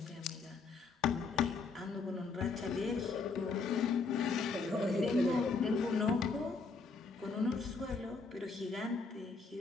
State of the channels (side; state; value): right; quieter; 4.4 dB